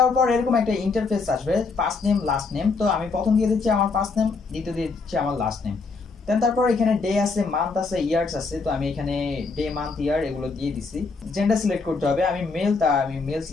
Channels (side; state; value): right; quieter; 4.3 dB